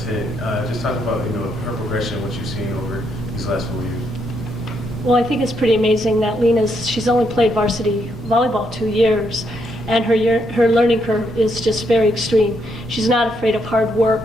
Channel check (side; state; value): both; normal; correlation 0.76